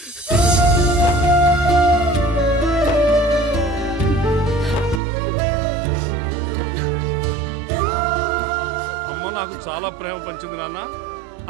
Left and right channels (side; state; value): left; drops out; at 5.0 s